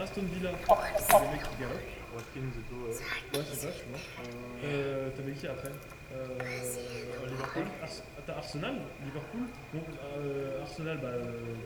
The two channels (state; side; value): identical; both; correlation 1.00